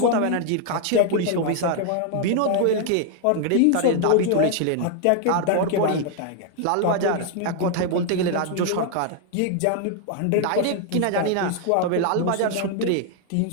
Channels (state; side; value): different; both; correlation 0.00